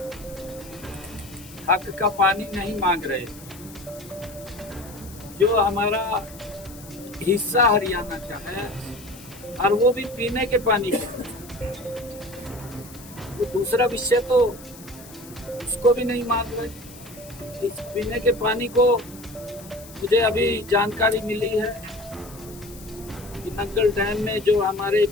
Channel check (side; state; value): left; noise; hiss, 19 dB below the sound